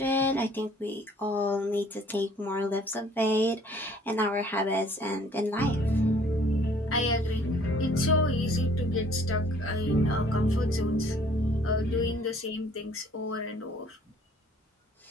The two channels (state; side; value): normal; both; correlation 0.57